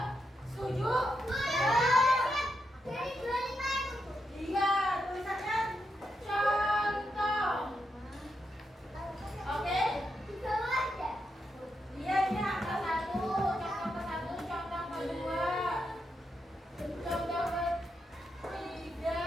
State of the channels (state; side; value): normal; both; correlation 0.84